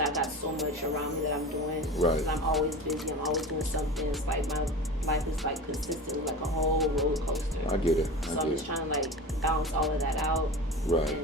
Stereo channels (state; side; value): normal; both; correlation 0.32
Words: got so much around me that I'm doing. Right. I'm always busy. I'm always doing something. It's like my life is like consistently like a whole roller coaster. I get it. So I'm just trying to like balance all of that out. Right.